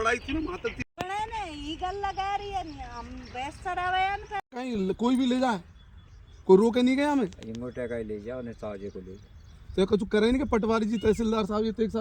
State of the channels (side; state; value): both; identical; correlation 1.00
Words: थी ना वहाँ तक थी। ईगल लगा रही है हम बेसरावयन पे कहीं कोई भी ले जाए, कोई रोके नहीं गया हमें। हिंगोटिया का ही ले जाओ, साजे को ले जाओ। तो कुछ करे नहीं कि पटवारी जी तहसीलदार साहब ये तो एक